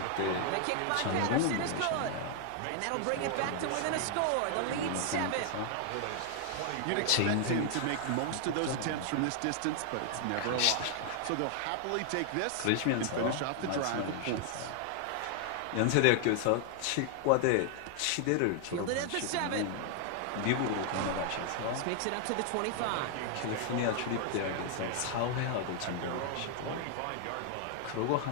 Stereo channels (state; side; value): different; both; correlation 0.00